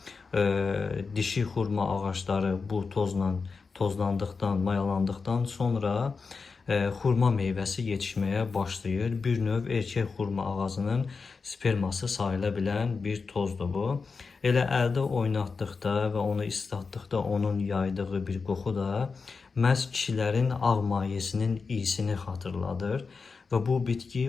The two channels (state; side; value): quieter; right; 4.7 dB